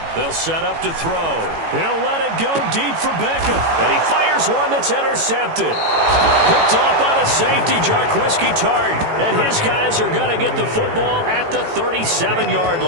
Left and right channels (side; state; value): left; late; 18 ms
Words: They'll set up to throw. He'll let it go deep for Beckham. And he fires one that's intercepted. Picked off by the safety, Jarquiski Tart. And his guys are going to get the football at the 37-yard